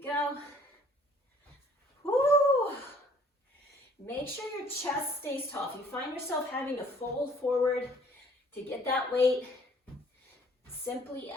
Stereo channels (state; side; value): normal; both; correlation 0.57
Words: go. Woo! Make sure your chest stays tall. If you find yourself having to fold forward to get that weight, simply